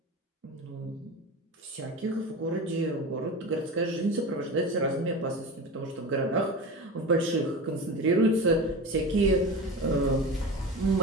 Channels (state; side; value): normal; both; correlation 0.29